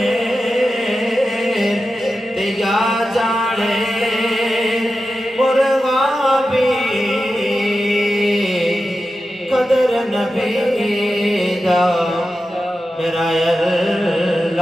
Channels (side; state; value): both; normal; correlation 0.91